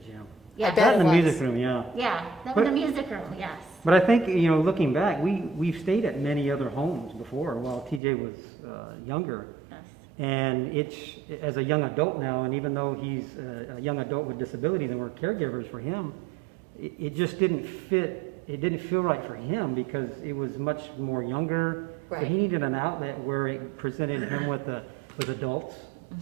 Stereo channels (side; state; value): left; drops out; at 8.0 s